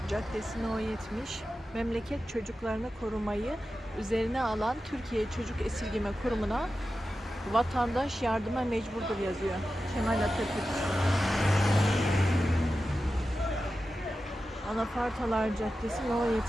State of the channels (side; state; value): both; normal; correlation 0.92